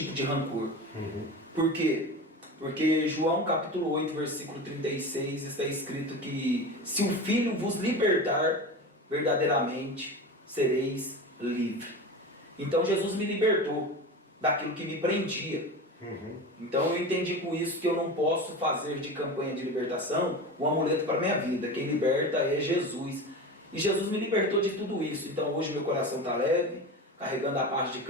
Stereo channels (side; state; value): both; normal; correlation 0.28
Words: de rancor. Por quê? Porque João capítulo 8, versículo 36 está escrito que se o Filho vos libertar, verdadeiramente sereis livres. Então Jesus me libertou daquilo que me prendia. Então eu entendi com isso que eu não posso fazer de campanha de libertação um amuleto para a minha vida. Quem liberta é Jesus. E Jesus me libertou de tudo isso. Então hoje meu coração está leve, carregando a paz de